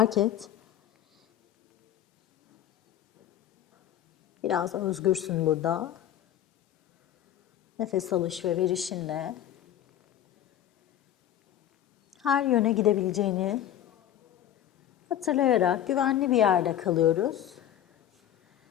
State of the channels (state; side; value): quieter; right; 11.3 dB